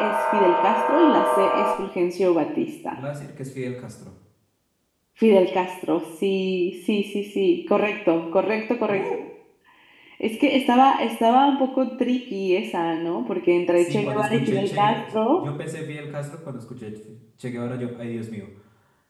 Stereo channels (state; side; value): identical; both; correlation 1.00